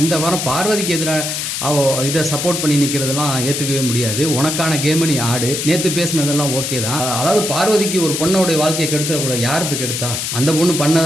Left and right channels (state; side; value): noise; left; hiss, 3 dB below the sound